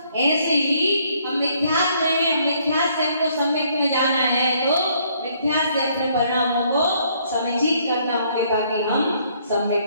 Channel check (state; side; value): inverted; both; correlation -0.66